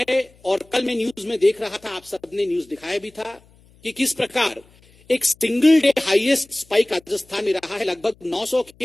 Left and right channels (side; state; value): left; noise; hum, 29 dB below the sound